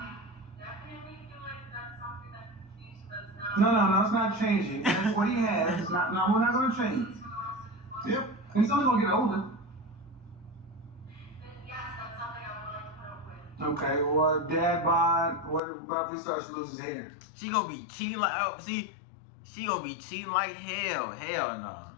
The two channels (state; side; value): drops out; right; at 15.6 s